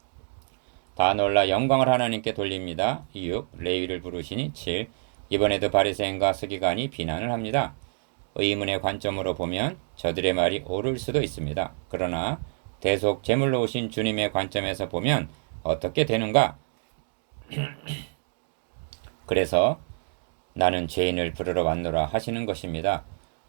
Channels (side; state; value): left; silent; digital silence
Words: 다 놀라 영광을 하나님께 돌립니다. 6. 레위를 부르시니 7. 이번에도 바리새인과 서기관이 비난을 합니다. 의문의 관점으로 보면 저들의 말이 옳을 수도 있습니다. 그러나 대속 제물로 오신 주님의 관점에서 보면 어떻게 되는가? 그래서 나는 죄인을 부르러 왔노라 하시는 것입니다.